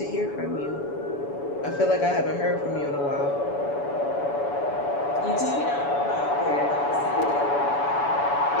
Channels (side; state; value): right; late; 7.0 ms